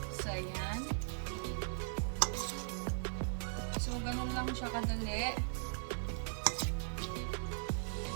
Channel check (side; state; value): left; silent; 52 dB below the other